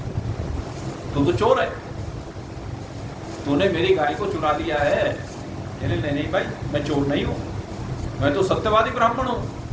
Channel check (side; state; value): both; identical; correlation 1.00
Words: तू तो चोर है, तूने मेरी गाय को चुरा लिया है। कहने नहीं भाई मैं चोर नहीं हूं, मैं तो सत्यवादी ब्राह्मण हूं